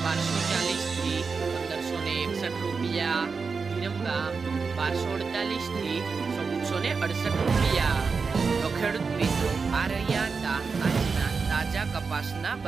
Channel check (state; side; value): quieter; left; 5.0 dB